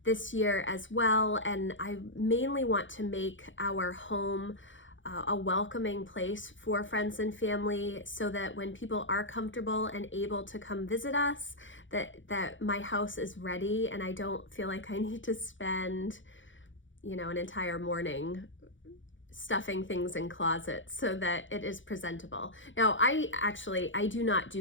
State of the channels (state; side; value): late; right; 0.56 ms